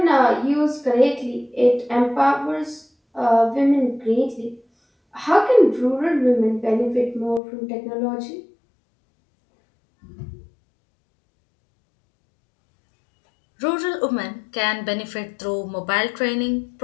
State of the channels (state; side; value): drops out; right; at 7.4 s